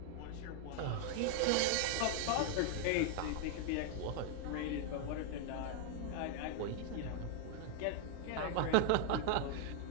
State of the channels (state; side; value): different; both; correlation 0.00